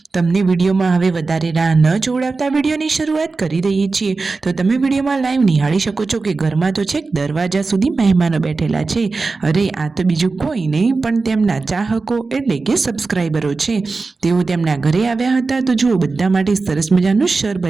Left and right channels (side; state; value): left; quieter; 4.0 dB